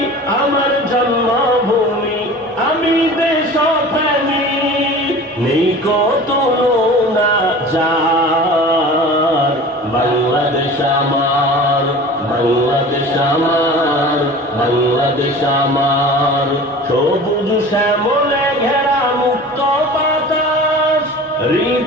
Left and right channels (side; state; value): both; normal; correlation 0.39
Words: আমার জন্মভূমি, আমি দেশপ্রেমী, নেই কত তুলনা যার। বাংলাদেশ আমার, বাংলাদেশ আমার, বাংলাদেশ আমার, সবুজ শ্যামলে ঘেরা মুক্ত বাতাস,